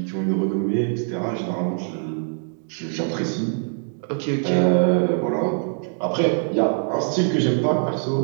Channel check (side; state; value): left; silent; digital silence